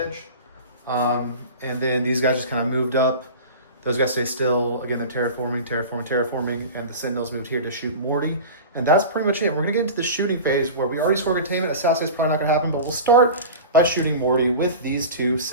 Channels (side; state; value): both; inverted; correlation -0.33